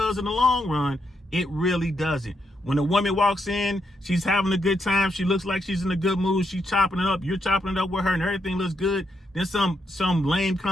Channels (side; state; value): both; normal; correlation 0.80